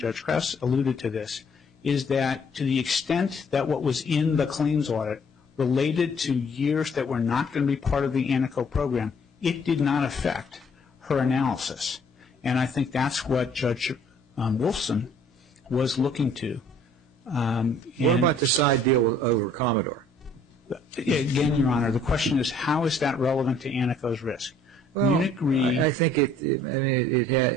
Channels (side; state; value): both; normal; correlation 0.59